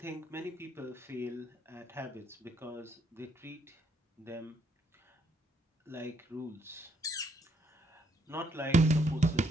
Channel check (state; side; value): normal; both; correlation 0.72